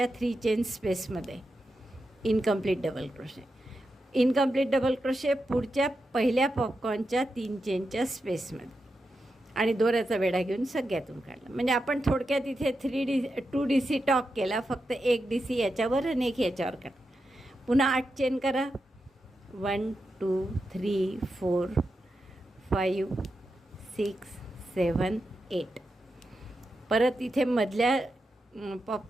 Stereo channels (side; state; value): both; normal; correlation 0.88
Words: 3 चेन स्पेसमध्ये incomplete double crochet. Incomplete double crochet पुढच्या पहिल्या पॉपकॉर्नच्या 3 चेनच्या स्पेसमध्ये आणि दोऱ्याचा वेढा घेऊन सगळ्यातून काढला. म्हणजे आपण थोडक्यात इथे 2 DC टॉक केला. फक्त एक DC याच्यावर आणि एक याच्यावर काढा. पुन्हा 8 चेन करा. 1 2 3 4 5 6 7 8. परत इथे मधल्या